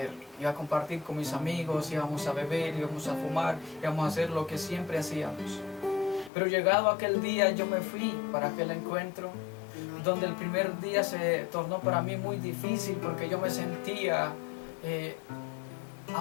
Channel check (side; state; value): right; drops out; at 6.3 s